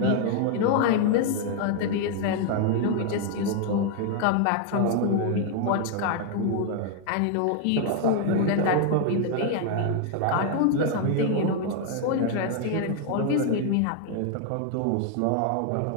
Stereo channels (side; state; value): both; different; correlation 0.00